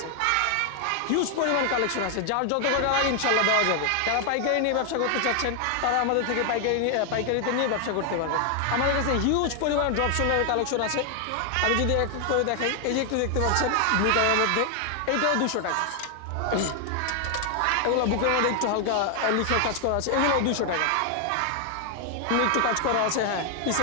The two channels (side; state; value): both; different; correlation 0.00